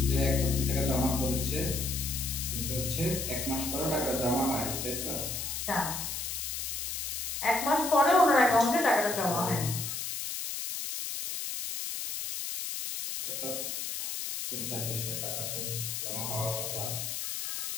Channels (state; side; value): noise; left; hiss, 4 dB below the sound